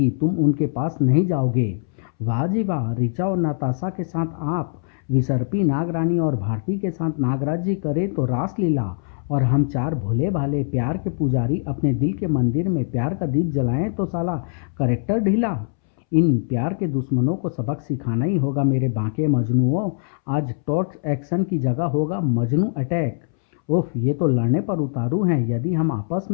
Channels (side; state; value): right; silent; 64 dB below the other